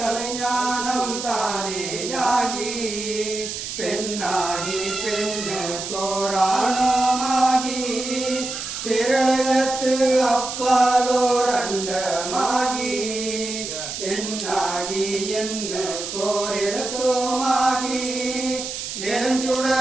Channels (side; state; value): right; noise; hiss, 6 dB below the sound